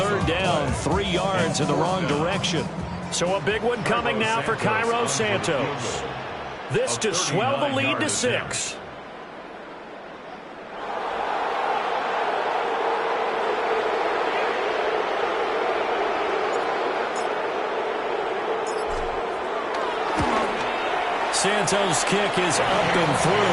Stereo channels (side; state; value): both; identical; correlation 1.00